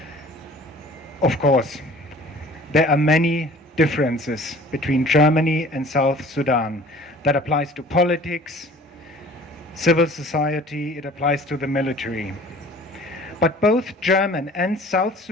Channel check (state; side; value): normal; both; correlation 0.48